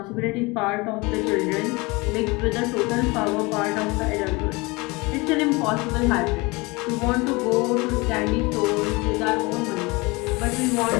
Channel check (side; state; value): right; quieter; 25.2 dB